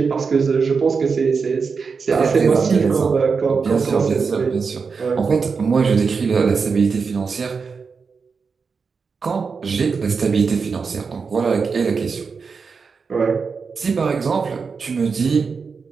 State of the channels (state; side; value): quieter; left; 5.2 dB